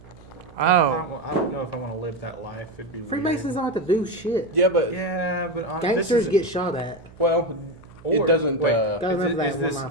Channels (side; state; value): right; noise; hum, 22 dB below the sound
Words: Oh. I don't know if I want to live that life. It'd be Freemasons weird. don't have to do shit. yeah, but Yeah, but Gangsters get shot at. well, it Or- doesn't. wait, Gotta is, remember it, is that one this last time.